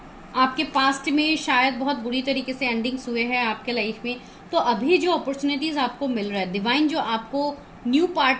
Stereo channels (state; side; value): identical; both; correlation 1.00